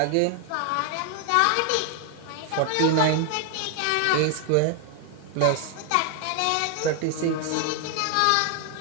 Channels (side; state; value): both; different; correlation 0.00